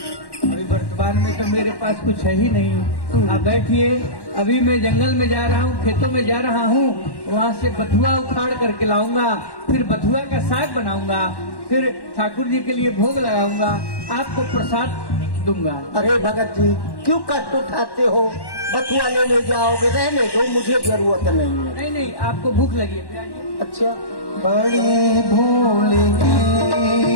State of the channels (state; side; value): late; right; 1.1 ms